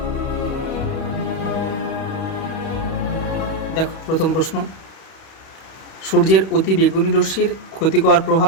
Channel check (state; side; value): late; right; 31 ms